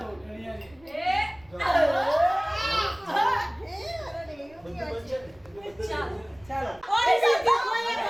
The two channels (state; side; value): noise; right; rumble, 27 dB below the sound